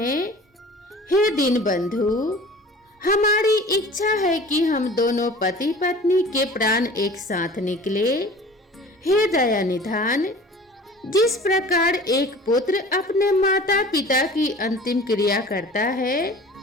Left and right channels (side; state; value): both; normal; correlation 0.43